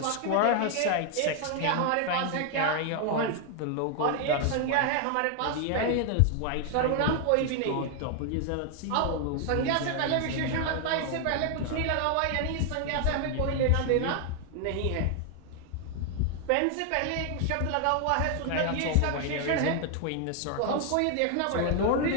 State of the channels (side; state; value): both; different; correlation 0.00